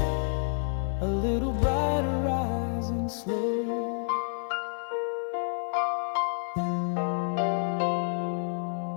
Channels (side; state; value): right; silent; 59 dB below the other